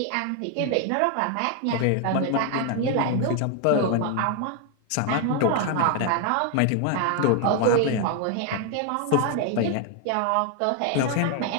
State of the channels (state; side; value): different; both; correlation 0.01